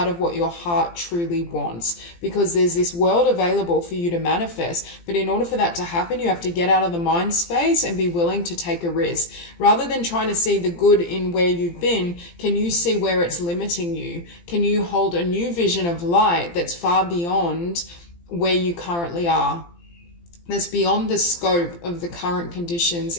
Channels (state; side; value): late; right; 17 ms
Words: of what your heart truly wants? Because there's this world available for you to manifest. But in order for that to happen, you have to get out of the mind space and be willing to take a risk. Rather than trying to see the good in where you've been, can you see where it's limiting you? Can you hold a new vision of light that's far beyond where you currently are? That's beyond the scope of the current conditions